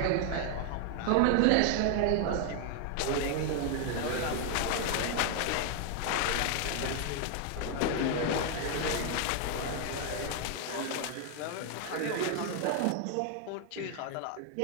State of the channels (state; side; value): different; both; correlation 0.00